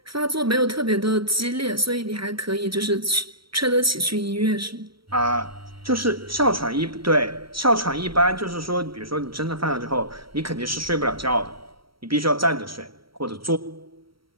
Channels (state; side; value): late; left; 0.75 ms